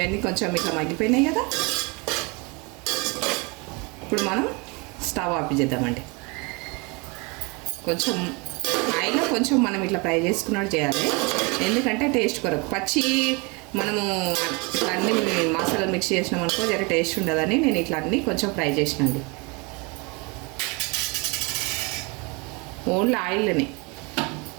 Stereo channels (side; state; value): left; quieter; 29.2 dB